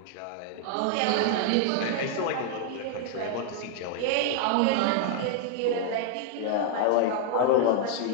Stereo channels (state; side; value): different; both; correlation 0.00